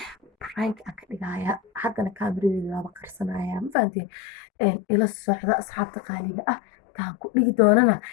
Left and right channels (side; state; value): right; drops out; at 3.8 s